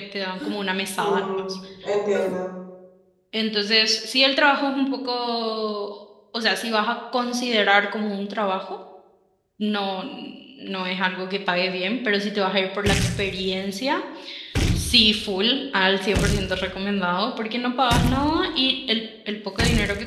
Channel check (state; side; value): identical; both; correlation 1.00